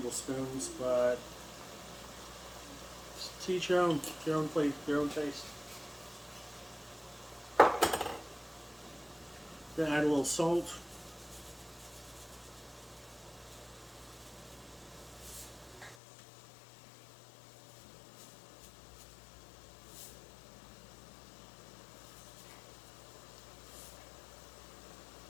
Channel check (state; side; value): drops out; right; at 16.0 s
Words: but to each your own plate, your own taste. Gonna add a little salt.